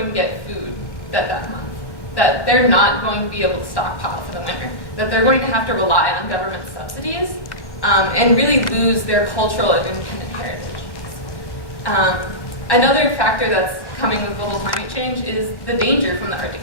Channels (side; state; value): right; late; 1.1 ms